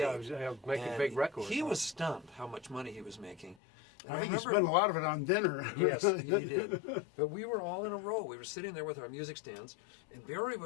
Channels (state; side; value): drops out; right; at 3.6 s